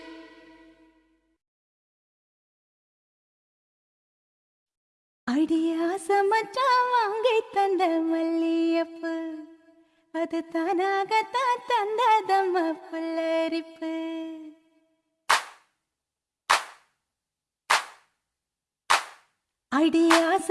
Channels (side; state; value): both; identical; correlation 1.00